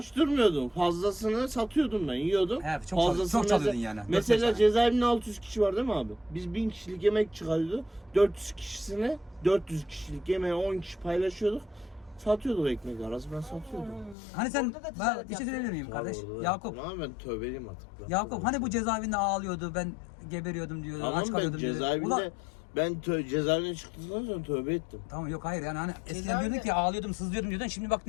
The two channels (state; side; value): drops out; right; at 14.2 s